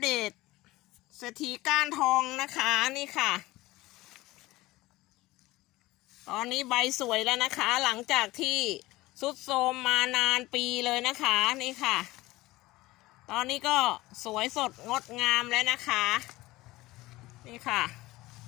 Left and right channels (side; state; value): right; quieter; 18.9 dB